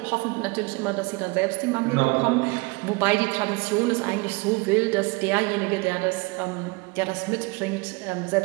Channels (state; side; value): quieter; left; 26.2 dB